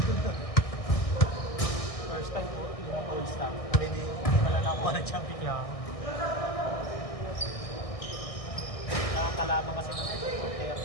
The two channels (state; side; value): late; right; 1.6 ms